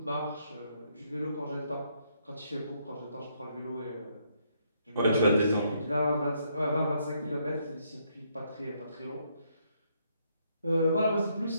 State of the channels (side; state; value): both; inverted; correlation -0.73